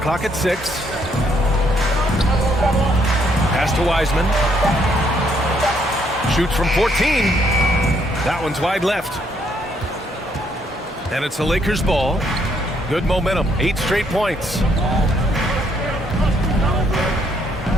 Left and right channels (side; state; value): both; normal; correlation 0.70